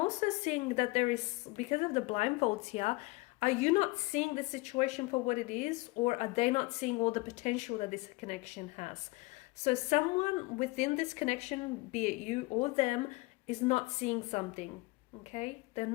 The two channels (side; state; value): right; quieter; 23.4 dB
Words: seeing that there is, because of the blindfolds here, are you not seeing the situation for what it is, or are they not seeing all the potential that this connection has? So someone within this connection, be it you or them, is not seeing something, okay? They're